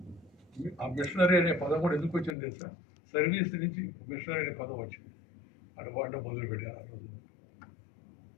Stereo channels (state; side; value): drops out; right; at 2.4 s